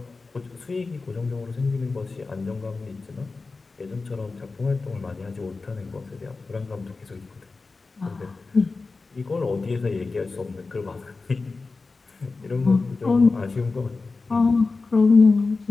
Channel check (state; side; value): quieter; right; 3.9 dB